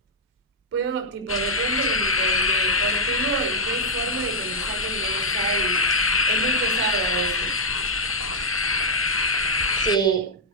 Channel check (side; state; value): both; normal; correlation -0.05